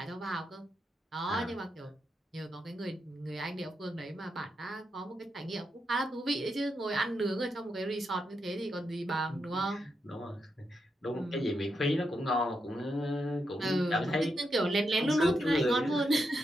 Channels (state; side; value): normal; both; correlation 0.84